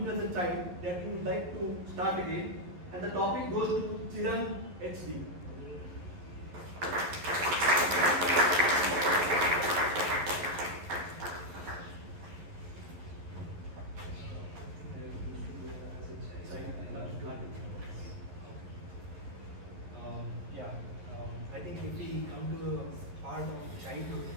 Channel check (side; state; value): left; late; 11 ms